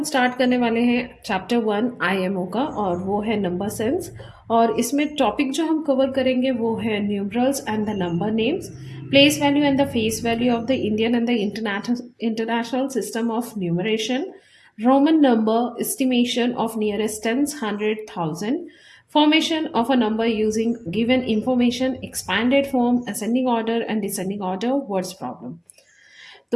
स्टार्ट करने वाले हैं चैप्टर 1 आईएमओ का और वो है नंबर सेंस। और इसमें टॉपिक जो हम कवर करेंगे वो है numerals and the number names, place value and the face value of the Indian and the international system of numeration, Roman number estimation of nearest tense 100,000, formation of a number using given information, expanded form, ascending order and descending order, words problem।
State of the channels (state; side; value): identical; both; correlation 1.00